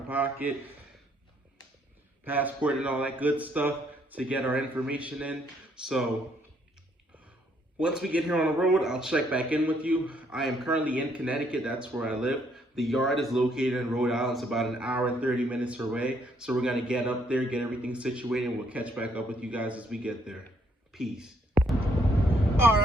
passport and all that good stuff to get our information in. So once we get here on the road, I'll check back in with you. I am currently in Connecticut. That's where I live. The yard is located in Rhode Island. It's about an hour and 30 minutes away. So we're gonna get up there, get everything situated, and we'll catch back up with you guys as we get there. Peace. All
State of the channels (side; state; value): both; normal; correlation 0.69